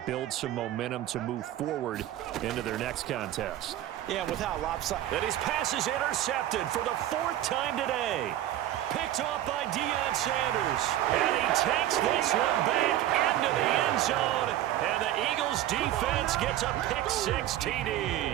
build some momentum to move forward into their next contest. Yeah, with how lopsided. And his pass is intercepted for the 4th time today. Picked off by Deion Sanders. And he takes this one back into the end zone. And the Eagles defense gets a pick-6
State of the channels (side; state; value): left; quieter; 13.0 dB